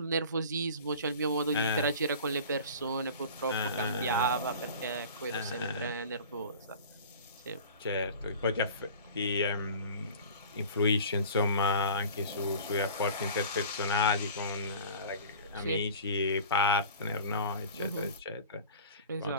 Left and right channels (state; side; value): inverted; both; correlation -0.41